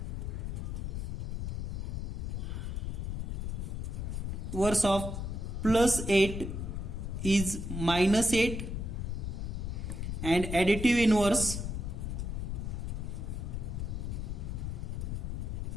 of plus 8 is minus 8 and additive inverse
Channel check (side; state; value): left; noise; rumble, 3 dB below the sound